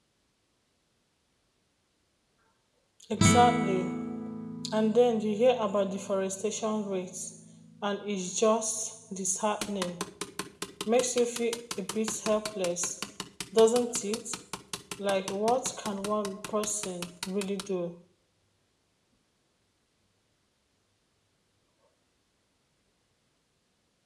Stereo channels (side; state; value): both; identical; correlation 1.00